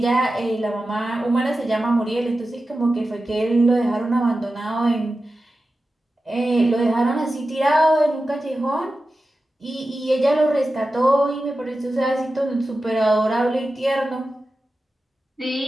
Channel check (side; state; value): both; normal; correlation 0.93